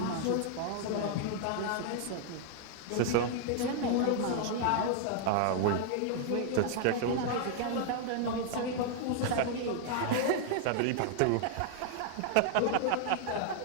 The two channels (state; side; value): different; both; correlation 0.00